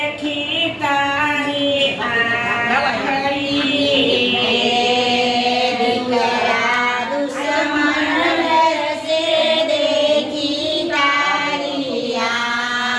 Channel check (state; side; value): identical; both; correlation 1.00